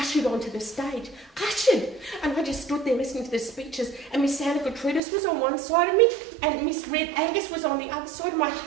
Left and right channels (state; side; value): drops out; left; at 5.0 s